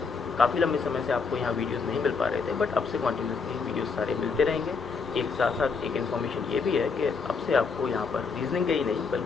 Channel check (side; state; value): right; quieter; 5.0 dB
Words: काफ़ी लंबे समय से आपको यहाँ वीडियोस नहीं मिल पा रहे थे, बट अब से कॉन्टिन्यूसली वीडियोस सारे मिलते रहेंगे। एक साथ साथ एक इन्फॉर्मेशन ये भी है कि अब से आपको यहाँ पर रीजनिंग के ही नहीं